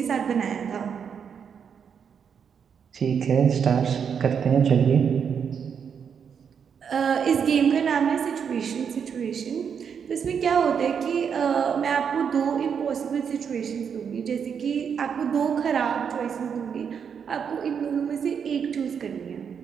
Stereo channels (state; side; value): quieter; left; 7.1 dB